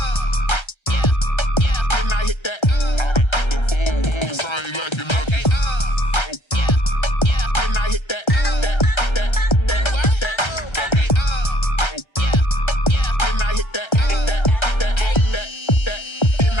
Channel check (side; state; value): right; late; 1.3 ms